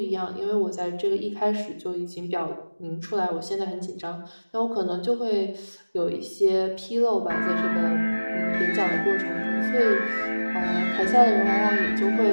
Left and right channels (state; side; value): inverted; both; correlation -1.00